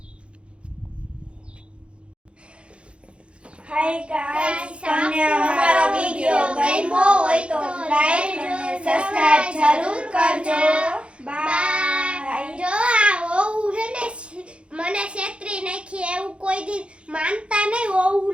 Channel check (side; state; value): left; late; 0.058 ms